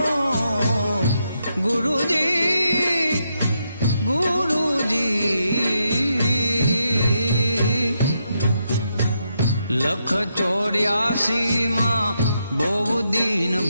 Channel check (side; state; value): both; inverted; correlation -0.81